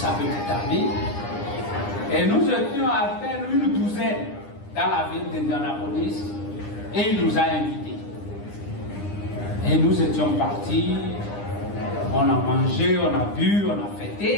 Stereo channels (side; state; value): right; late; 9.9 ms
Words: petite amie, et nous étions à peine une douzaine dans la ville d'Indianapolis, et il nous a invités. Et nous étions partis, on a mangé, on a bu, on a